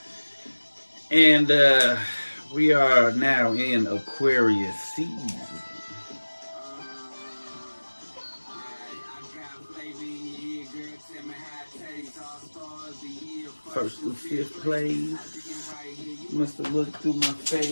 And we are now in Aquarius season. First through fifth place, must have looked through my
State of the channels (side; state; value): both; inverted; correlation -1.00